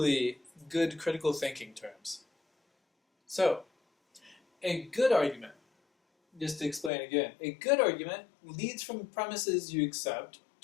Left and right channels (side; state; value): right; drops out; at 6.9 s